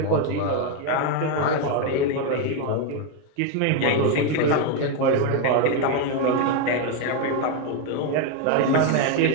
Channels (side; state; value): both; different; correlation 0.02